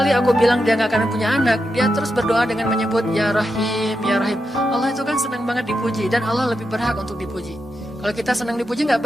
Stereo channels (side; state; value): both; normal; correlation 0.86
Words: aku bilang dia gak akan punya anak, dia terus berdoa dengan menyebut Ya Rahim, Ya Rahim. Allah itu kan senang banget dipuji, dan Allah lebih berhak untuk dipuji. Kalau kita senang dipuji gak